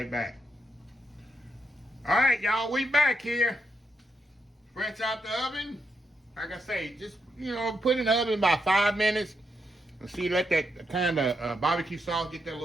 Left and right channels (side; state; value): both; normal; correlation 0.81